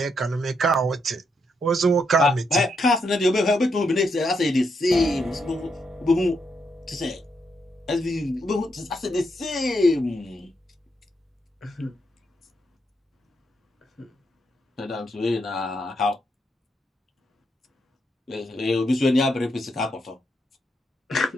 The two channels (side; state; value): both; normal; correlation 0.79